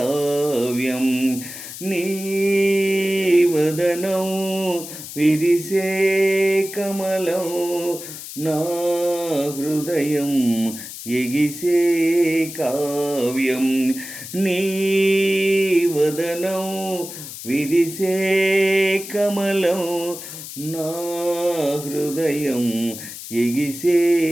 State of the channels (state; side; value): noise; left; hiss, 11 dB below the sound